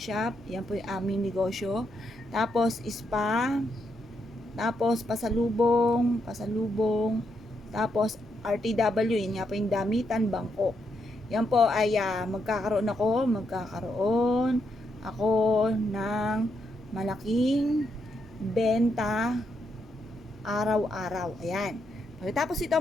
Yan po yung aming negosyo. Tapos, spa. Tapos, pasalubong. Tapos, RTW, yun nga po yung damitan, bangko. Yan po ay magkakaroon ako ng malaking benta araw-araw. Ayan. Pagkatapos ito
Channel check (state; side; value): normal; both; correlation 0.80